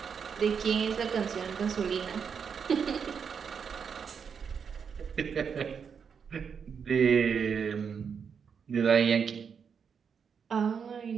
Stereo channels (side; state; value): left; quieter; 6.6 dB